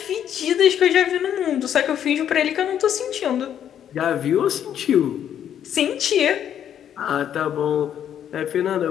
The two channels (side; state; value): right; quieter; 9.7 dB